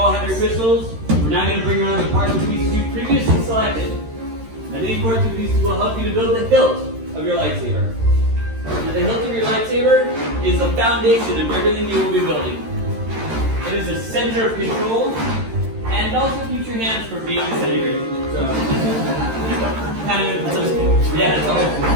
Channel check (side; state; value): left; late; 13 ms